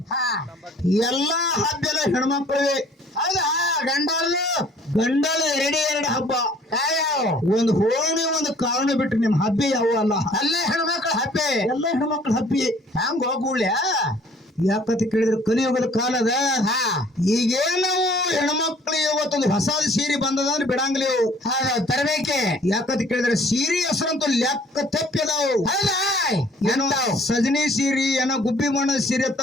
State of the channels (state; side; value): normal; both; correlation 0.56